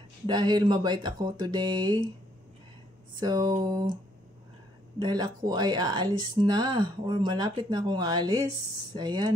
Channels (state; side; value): normal; both; correlation 0.69